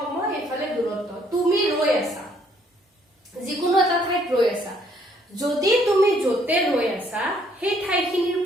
এফালে দূৰত্ব তুমি ৰৈ আছা যিকোনো এটা ঠাইত ৰৈ আছা যদি তুমি যতে ৰৈ আছা সেই ঠাইখিনিৰ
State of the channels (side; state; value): both; normal; correlation 0.66